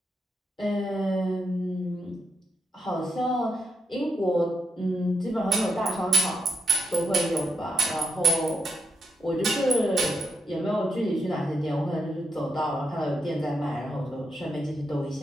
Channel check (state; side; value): normal; both; correlation 0.82